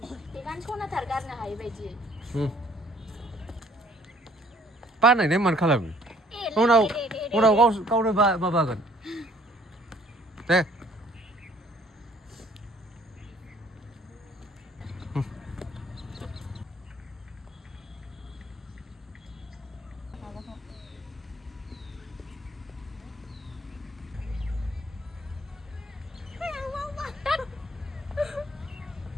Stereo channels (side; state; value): both; normal; correlation 0.59